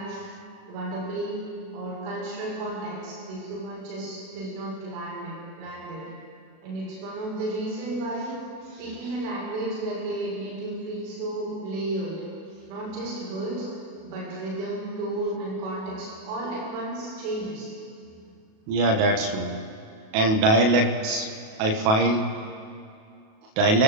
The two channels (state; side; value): late; left; 37 ms